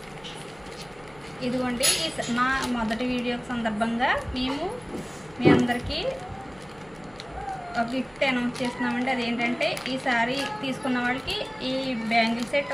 ఇదిగోండి, మా మొదటి వీడియో సందర్భంగా మేము మీ అందరికీ ఒక గిఫ్ట్ అనౌన్స్ చేస్తున్నామండి. అదేంటంటే ఈ శారీ తీసుకున్న వాళ్ళకి ఈ బ్యాంగిల్ సెట్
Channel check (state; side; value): noise; right; hum, 26 dB below the sound